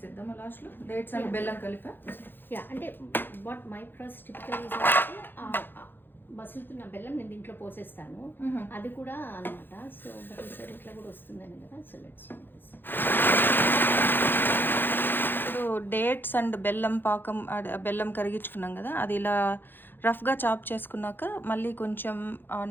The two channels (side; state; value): right; late; 0.098 ms